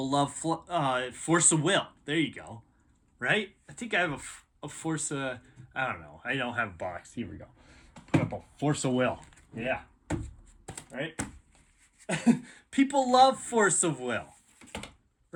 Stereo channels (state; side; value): identical; both; correlation 1.00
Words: love force of will. There you go. Right? I think I have a force of... I don't know. I don't have a box. Here we go. Put up a force of will. Yeah. Right? People love force of will.